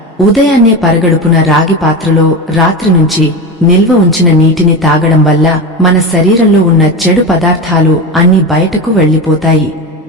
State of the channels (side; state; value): both; normal; correlation 0.22